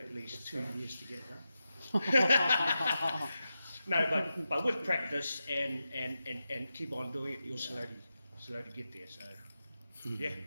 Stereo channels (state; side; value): inverted; both; correlation -0.90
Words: least 2 years to get it done. No, but with practice and keep on doing it, you'll slowly get there. So yeah,